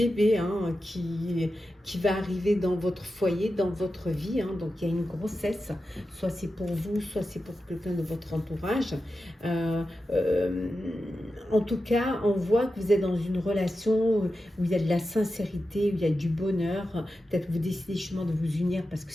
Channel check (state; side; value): normal; both; correlation 0.91